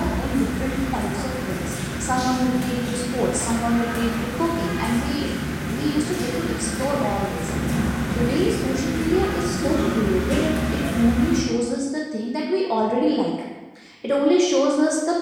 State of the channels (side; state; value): both; identical; correlation 1.00